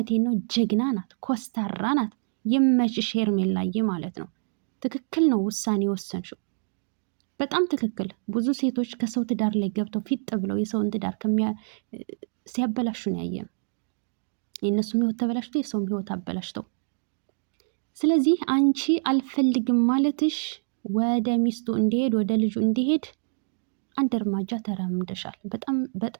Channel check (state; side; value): silent; left; digital silence